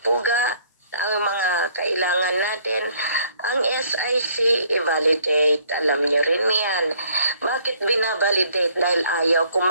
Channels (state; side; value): inverted; both; correlation -0.62